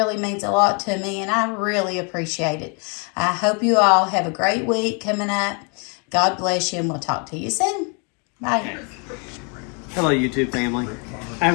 means a lot to me, and I really appreciate it. I hope you all have a great week coming up. God bless you, and we'll talk to you soon. Bye. Hello, YouTube family. I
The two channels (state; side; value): quieter; right; 35.7 dB